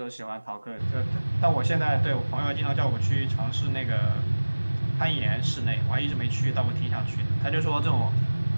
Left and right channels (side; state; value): both; inverted; correlation -1.00